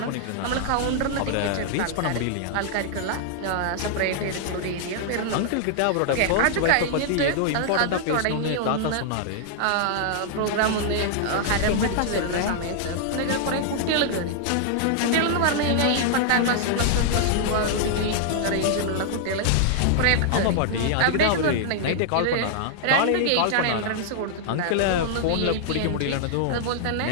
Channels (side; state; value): both; different; correlation -0.01